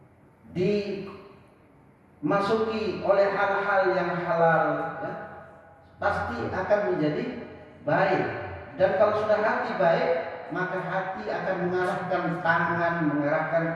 dimasuki oleh hal-hal yang halal, ya, pasti akan menjadi baik. Dan kalau sudah hati baik, maka hati akan mengarahkan tangan, mengarahkan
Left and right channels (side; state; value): both; identical; correlation 1.00